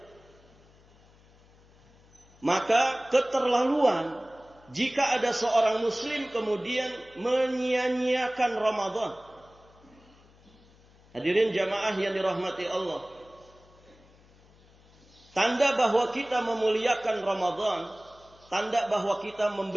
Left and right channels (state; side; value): noise; left; hum, 28 dB below the sound